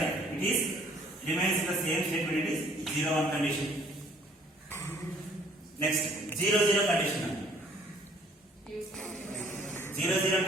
it is remains in the same statement, it is 0 1 condition. Next 0 0 condition. 0 0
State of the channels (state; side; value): normal; both; correlation 0.59